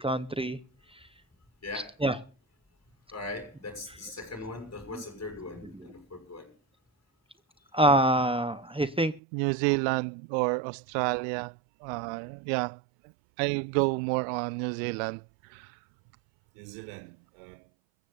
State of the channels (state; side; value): drops out; left; at 9.2 s